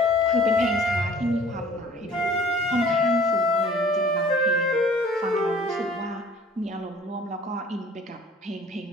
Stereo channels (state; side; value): normal; both; correlation 0.51